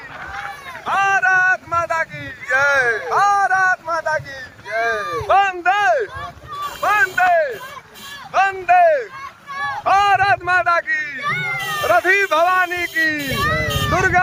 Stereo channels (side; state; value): both; identical; correlation 1.00